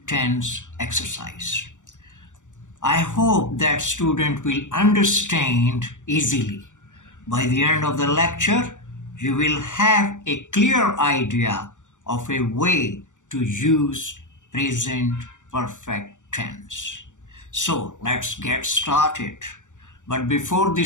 tense exercise. I hope that student will understand easily. By the end of the lecture, you will have a clear idea of a way to use present perfect tense. So let's get started. But before the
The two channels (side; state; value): right; late; 0.86 ms